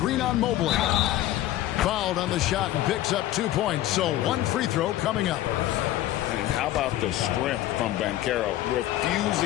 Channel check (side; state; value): right; quieter; 14.3 dB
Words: on Mobley. Fouled on the shot and picks up 2 points. So one free throw coming up. And how about the strength from Banchero,